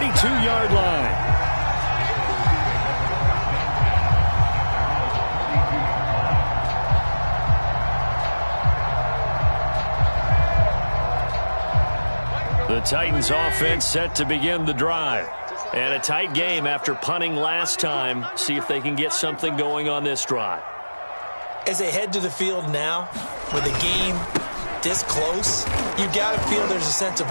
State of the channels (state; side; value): inverted; both; correlation -1.00